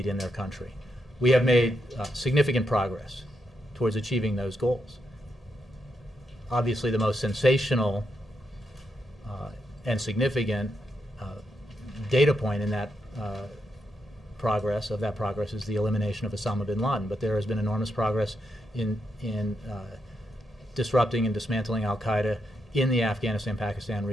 in their country. We have made significant progress towards achieving those goals. Obviously, the most sensational and significant data point in that progress is the elimination of Osama bin Laden. But there has been enormous progress in disrupting and dismantling al-Qaeda in the Afghanistan-Pakistan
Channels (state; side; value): normal; both; correlation 0.82